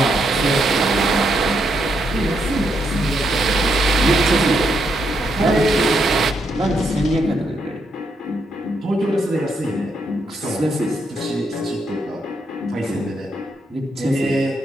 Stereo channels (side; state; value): both; normal; correlation 0.78